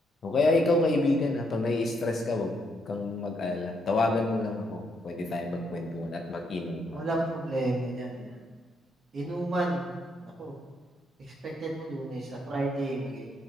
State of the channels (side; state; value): both; normal; correlation 0.75